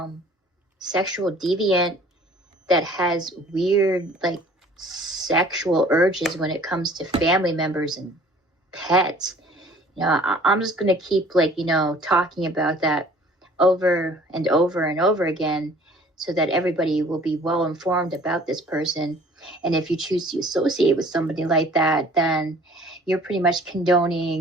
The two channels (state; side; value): normal; both; correlation 0.51